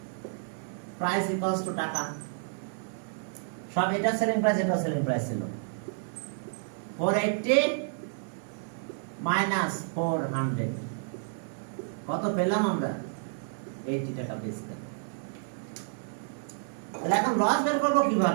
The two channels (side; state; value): left; silent; digital silence